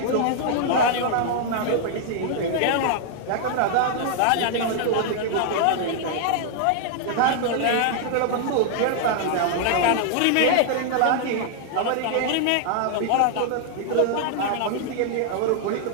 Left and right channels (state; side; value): different; both; correlation -0.01